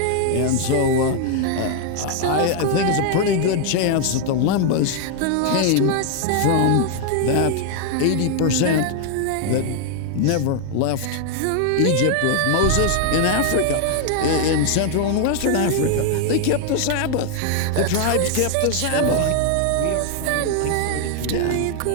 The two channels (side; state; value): both; different; correlation 0.00